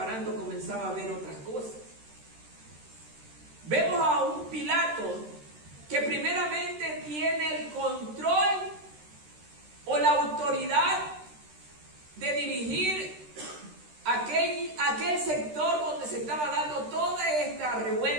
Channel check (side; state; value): left; late; 13 ms